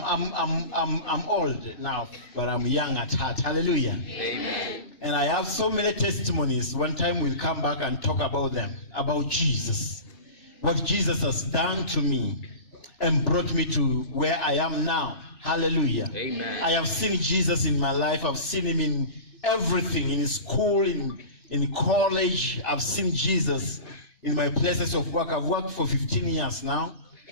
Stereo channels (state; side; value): late; right; 3.4 ms